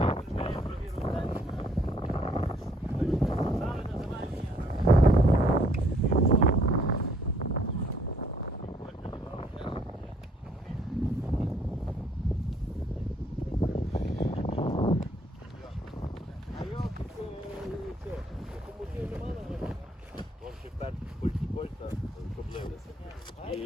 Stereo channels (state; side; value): normal; both; correlation 0.64